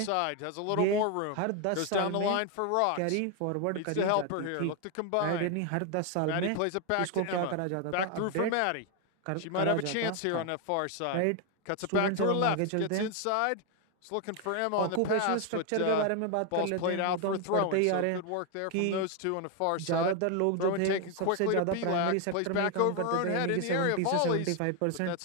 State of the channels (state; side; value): different; both; correlation 0.01